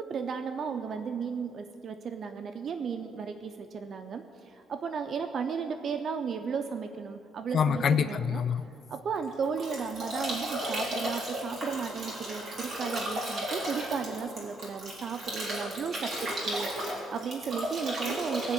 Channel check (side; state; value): both; normal; correlation 0.71